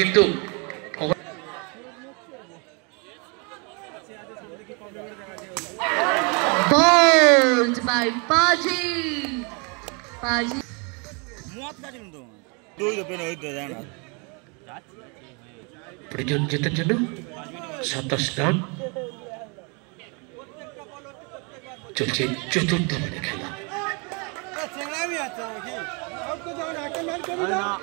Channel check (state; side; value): quieter; left; 33.2 dB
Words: কিন্তু Bowled by Paji. Paji. প্রয়োজন জেতার জন্য 27 রান চলছে চতুর্থ ওভারে খেলা।